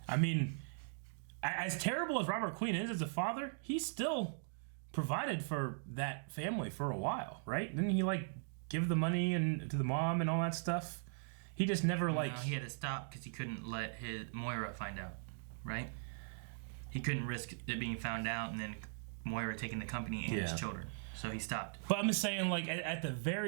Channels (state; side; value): silent; left; digital silence